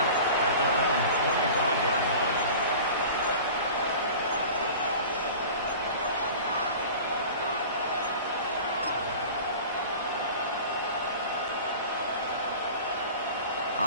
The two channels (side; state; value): both; inverted; correlation -0.39